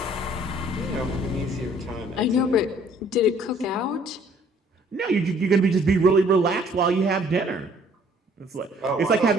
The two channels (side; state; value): both; normal; correlation 0.59